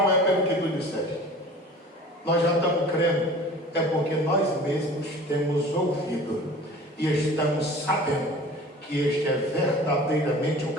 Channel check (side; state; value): both; normal; correlation 0.42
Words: é pelo que tu disseste, nós já estamos crendo, é porque nós mesmos temos ouvido e estamos sabendo que este é verdadeiramente o